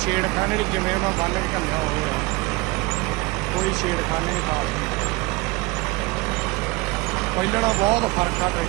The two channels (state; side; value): quieter; left; 22.9 dB